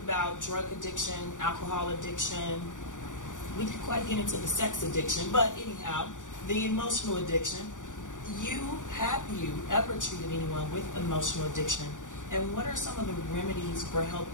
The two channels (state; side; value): late; right; 0.87 ms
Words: drug addiction, alcohol addiction. We didn't quite get into the sex addiction, but anyhow, the emotional addiction. Have you ever treated anyone with emotional addiction? And what are some of the remedies for